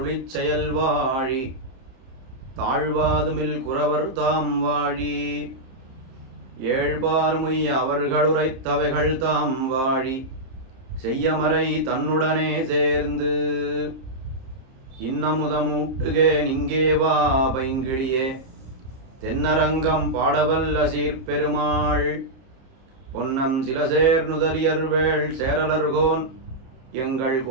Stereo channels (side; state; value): left; late; 30 ms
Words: செயல் வாழி தாழ்வாதுமில் குறவர் தாம் வாழி ஏழ்பார்முய் அவர்களுரைத்தவைகள் தாம் வாழி செய்யமறை தன்னுடனே சேர்ந்து இன்னமுதமூட்டுகே நிங்கே வா பைங்கிழியே தென்னரங்கம் பாடவல்ல சீர்பெருமாள் பொன்னம் சிலசேர் நுதலியர்வேள் சேரலர்கோன் எங்கள்